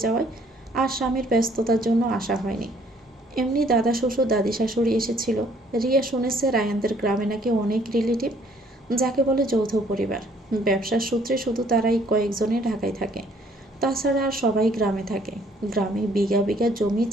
যাওয়ায় আর স্বামীর ব্যস্ততার জন্য আসা হয়নি। এমনি দাদা শ্বশুর দাদি শাশুড়ি এসেছিল। রিয়া শুনেছে রায়ানদের গ্রামে নাকি অনেক রিলেটিভ, যাকে বলে যৌথ পরিবার। ব্যবসার সূত্রে শুধু তারাই কয়েকজনে ঢাকায় থাকে, তাছাড়া আর সবাই গ্রামে থাকে। গ্রামে বিঘা বিঘা জমি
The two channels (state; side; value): normal; both; correlation 0.62